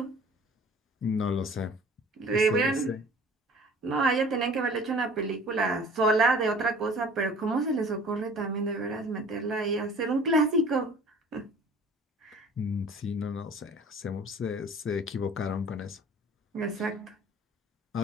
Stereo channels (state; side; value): normal; both; correlation 0.48